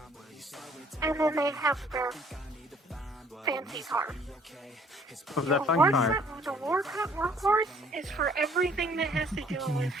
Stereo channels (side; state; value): both; normal; correlation 0.59